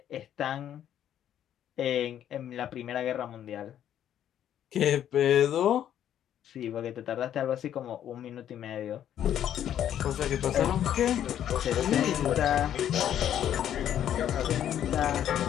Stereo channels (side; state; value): right; quieter; 10.4 dB